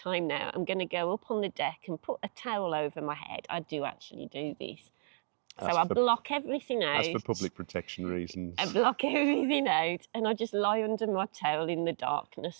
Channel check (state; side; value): silent; left; digital silence